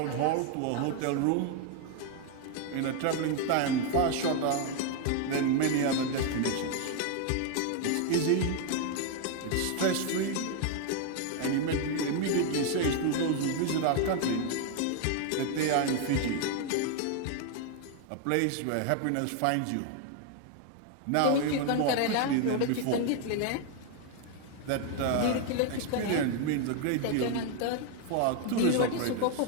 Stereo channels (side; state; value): both; different; correlation 0.00